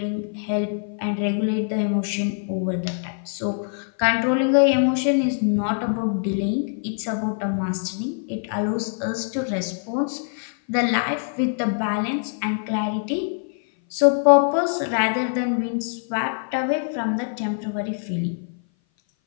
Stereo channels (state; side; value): silent; right; 58 dB below the other